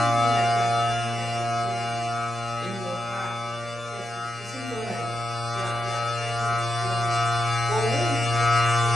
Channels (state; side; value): normal; both; correlation 0.86